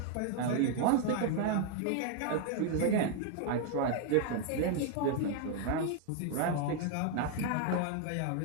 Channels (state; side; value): different; both; correlation 0.00